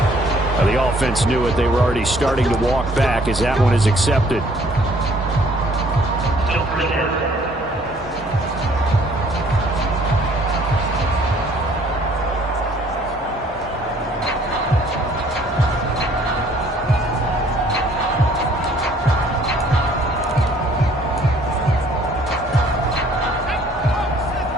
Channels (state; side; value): normal; both; correlation 0.59